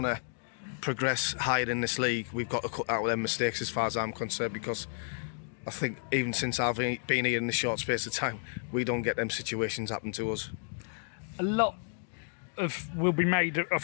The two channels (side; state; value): right; silent; digital silence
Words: to progress higher in this league, we've got to cut out them mistakes as far as I'm concerned, because I think even since I've been here in this short space of time, we don't get them situations happen to us. A lot will be made of